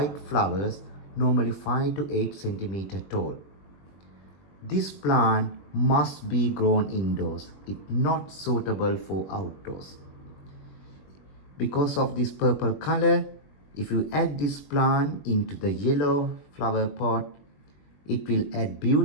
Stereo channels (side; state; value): right; late; 21 ms